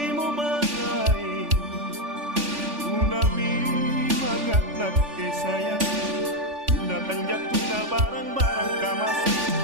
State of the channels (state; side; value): late; left; 3.4 ms